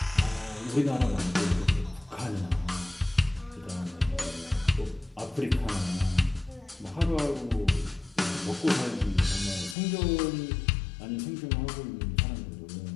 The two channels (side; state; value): right; drops out; at 9.8 s